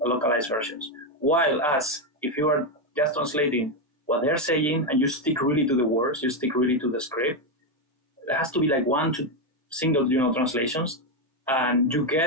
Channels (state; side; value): normal; both; correlation 0.06